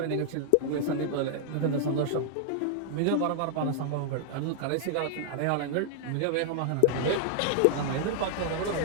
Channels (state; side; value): different; both; correlation 0.00